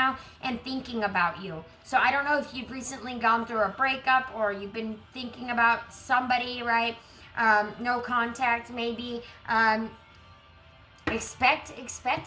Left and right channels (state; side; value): identical; both; correlation 1.00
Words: and thinking about you. So I don't know if you've recently gone through a breakup or you've been thinking about somebody, right? No contact, maybe. Expect